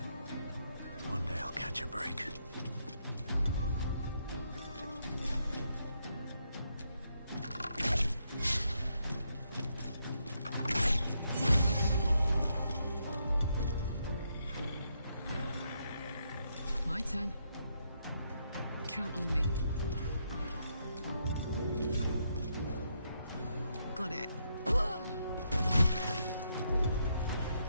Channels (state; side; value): inverted; both; correlation -0.78